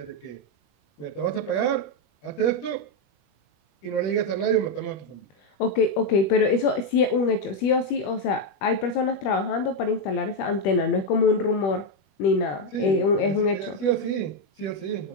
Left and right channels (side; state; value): right; late; 21 ms